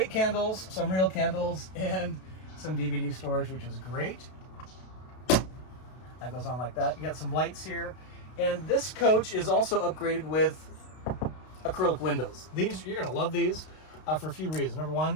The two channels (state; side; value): late; right; 32 ms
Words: candles, some real candles, and some DVD storage, which is great. That goes on like that. You got some lights here. And this coach is also upgraded with acrylic windows. These, you're gonna love these for a few reasons. Number